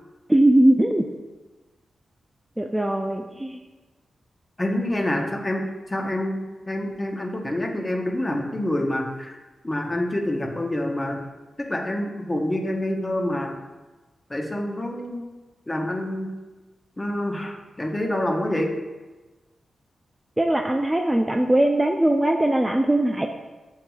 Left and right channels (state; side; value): normal; both; correlation 0.96